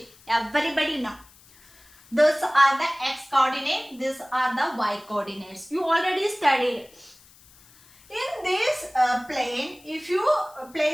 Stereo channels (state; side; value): noise; left; hiss, 26 dB below the sound